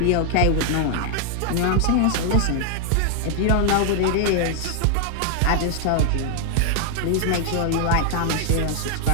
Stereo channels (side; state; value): both; different; correlation 0.00